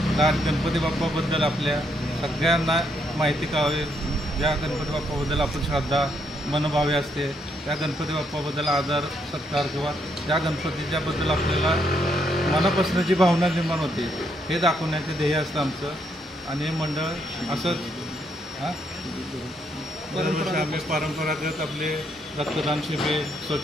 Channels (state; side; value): normal; both; correlation 0.75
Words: गणपती बाप्पाबद्दल आपल्या सगळ्यांना माहिती कळावी, ज्या गणपती बाप्पाबद्दल आपण श्रद्धा मनभावे असते, त्या गणपती बाप्पाबद्दल आदर सत्कार किंवा त्या गणपतीच्याबद्दल आपल्याला मनापासून जी भावना निर्माण होते हे दाखवण्याचे ध्येय असतं आमचं. आणि हे मंडळ असंच दरवर्षी आम्ही परंपरागत आपले रक्तदान शिबिर,